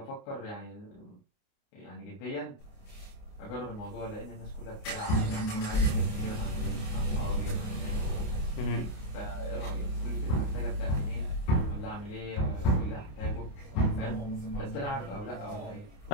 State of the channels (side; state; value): right; late; 28 ms